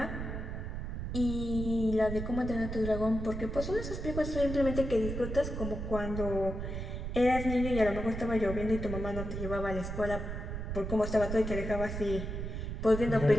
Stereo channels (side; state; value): right; noise; rumble, 5 dB below the sound